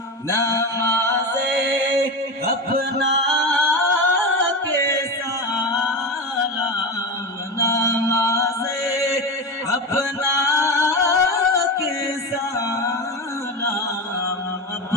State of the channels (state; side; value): normal; both; correlation 0.22